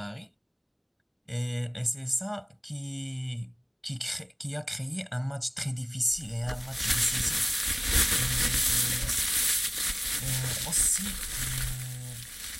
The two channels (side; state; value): both; identical; correlation 1.00